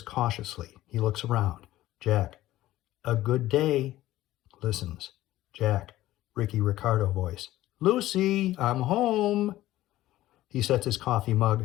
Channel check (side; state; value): right; quieter; 15.4 dB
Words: cautiously. He looks around. Jack, a good day. Listens. Jack, Ricky Ricardo voice. Lucy, I'm home. He sets his coffee mug